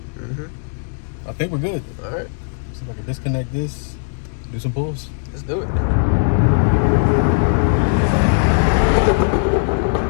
I think we're good. All right. See if I can disconnect this, do some pulls. Let's do it.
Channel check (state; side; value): silent; right; digital silence